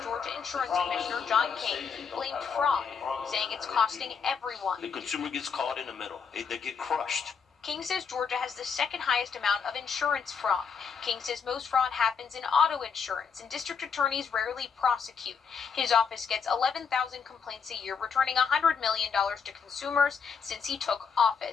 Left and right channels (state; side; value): quieter; right; 6.2 dB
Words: Georgia Insurance Commissioner John King blamed fraud, saying it's costing everyone. The consumer gets caught in the middle. They get crushed. King says Georgia has the second highest amount of insurance fraud. King says most fraud happens in auto insurance, and district attorneys rarely prosecute. His office gets 11,000 complaints a year, returning $100 million to consumers since he took